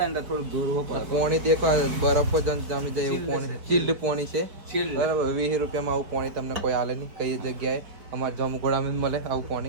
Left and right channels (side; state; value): left; late; 4.6 ms